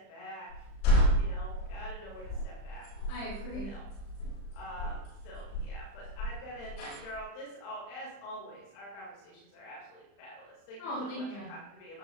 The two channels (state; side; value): late; right; 35 ms